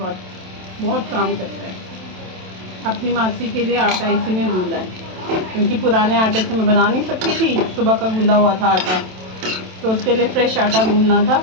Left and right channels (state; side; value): late; left; 27 ms